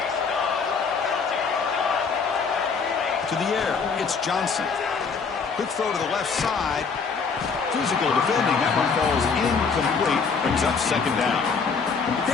To the air, it's Johnson. Quick throw to the left side. Physical defending. That one falls incomplete. Brings up second down.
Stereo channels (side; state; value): right; quieter; 5.3 dB